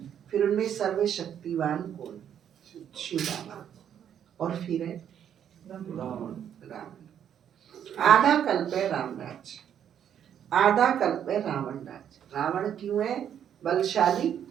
फिर उनमें सर्वशक्तिवान कौन? शिव बाबा। और फिर है रावण। आधा कल्प है राम राज्य, आधा कल्प है रावण राज्य। रावण क्यों है बलशाली?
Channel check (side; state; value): left; quieter; 9.3 dB